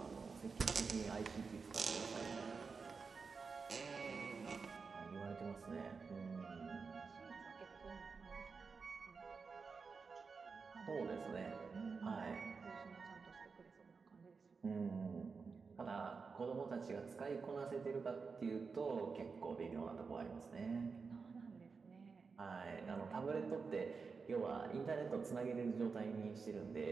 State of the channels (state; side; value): quieter; left; 5.0 dB